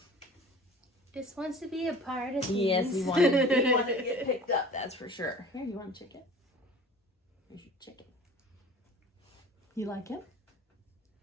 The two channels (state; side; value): normal; both; correlation 0.42